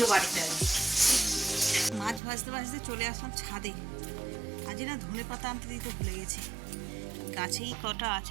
বাড়িতে আর কি। মাছ ভাজতে ভাজতে চলে আসলাম ছাদে। আজ না ধনে পাতা আনতে দিতে ভুলে গেছি, গাছেই কটা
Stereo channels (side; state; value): left; drops out; at 2.2 s